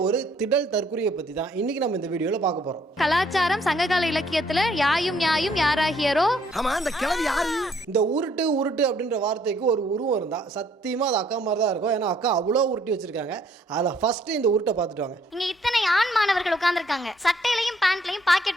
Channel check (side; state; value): both; normal; correlation 0.65